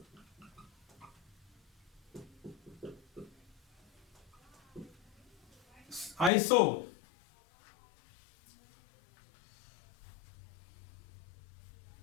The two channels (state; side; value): drops out; right; at 6.3 s